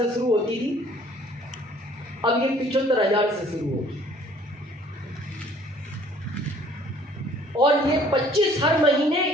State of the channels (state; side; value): normal; both; correlation 0.56